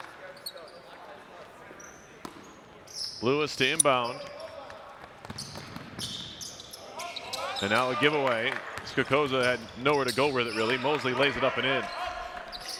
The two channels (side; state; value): both; identical; correlation 1.00